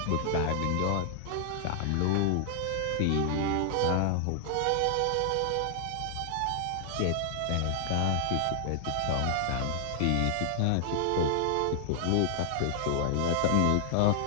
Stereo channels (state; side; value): different; both; correlation 0.00